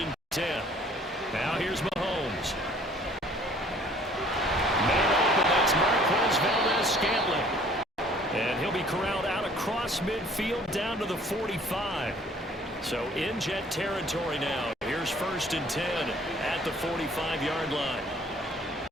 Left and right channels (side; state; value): both; normal; correlation 0.56